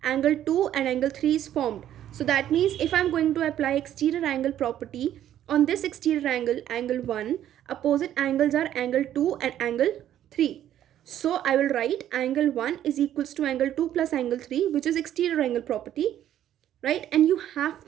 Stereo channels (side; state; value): left; quieter; 11.4 dB